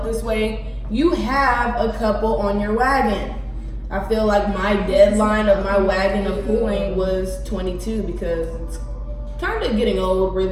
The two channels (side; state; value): both; identical; correlation 1.00